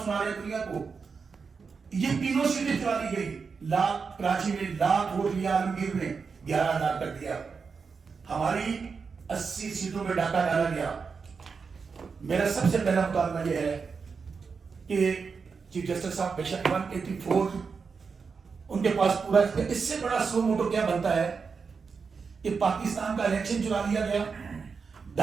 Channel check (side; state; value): left; quieter; 5.3 dB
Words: سنا رہے ہیں دنیا کو۔ یہ تینوں سیٹیں چلا دی گئی، لاکھ کراچی میں لاکھ ووٹ لیا، عالمگیر نے 11,000 کر دیا، ہماری 80 سیٹوں میں ڈاکہ ڈالا گیا۔ میرا سب سے پہلا مطالبہ یہ ہے کہ چیف جسٹس صاحب بے شک 184 ان کے پاس پورا، اس سے بڑا سو موٹو کیا بنتا ہے کہ پاکستان کا الیکشن چرا لیا گیا،